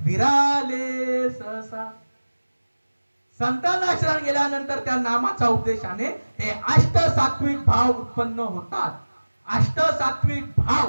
सहसा. संतांना शरण गेल्यानंतर त्या नामाचा उपदेशाने हे अष्ट सात्विक भाव उत्पन्न होतात. अष्ट सात्विक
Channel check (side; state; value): both; inverted; correlation -1.00